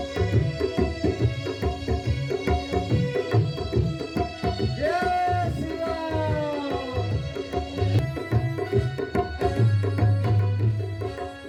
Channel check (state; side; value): identical; both; correlation 1.00